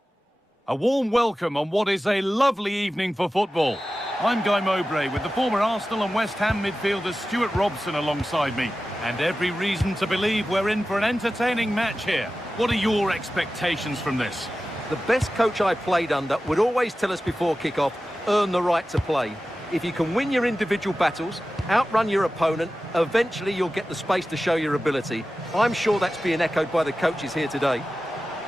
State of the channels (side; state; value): both; normal; correlation 0.94